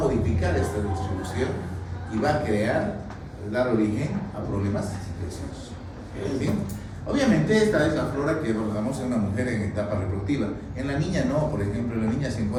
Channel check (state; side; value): identical; both; correlation 1.00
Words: esta distribución y va a dar origen a problemas infecciosos. ¿Sí? Obviamente esta es la flora que abordamos en una mujer en etapa reproductiva. En la niña no, por ejemplo, en la niña se